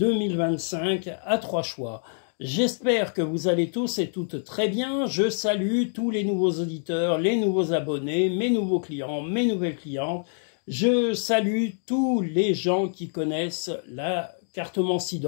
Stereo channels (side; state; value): right; silent; digital silence